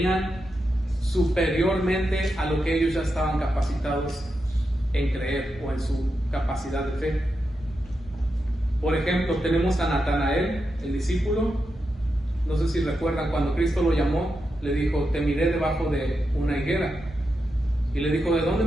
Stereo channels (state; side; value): normal; both; correlation 0.87